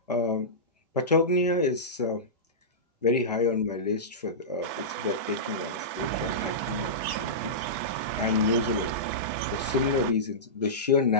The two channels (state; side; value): normal; both; correlation -0.16